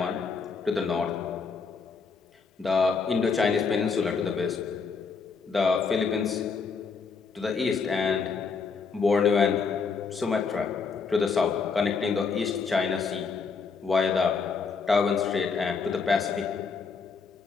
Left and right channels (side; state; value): right; quieter; 5.2 dB